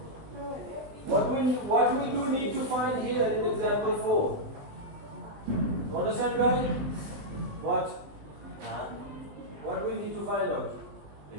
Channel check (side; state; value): left; late; 20 ms